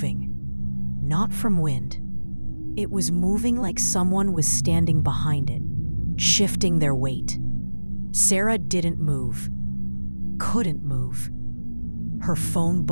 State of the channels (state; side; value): inverted; both; correlation -1.00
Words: Not from wind. It was moving like someone was standing behind it, shifting their weight. Sarah didn't move. Couldn't move. Her phone